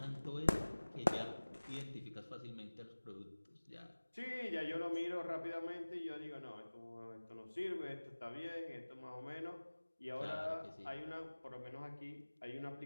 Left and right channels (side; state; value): both; inverted; correlation -1.00